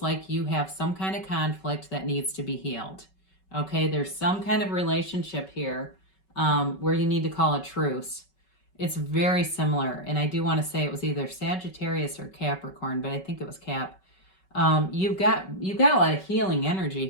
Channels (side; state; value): right; late; 5.3 ms